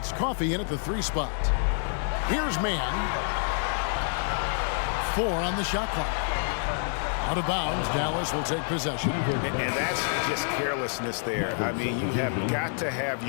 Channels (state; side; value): silent; right; digital silence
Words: Coffey in at the 3 spot. Here's Mann. 4 on the shot clock. Out of bounds, Dallas will take possession. And that's just carelessness there. I mean, you have got to have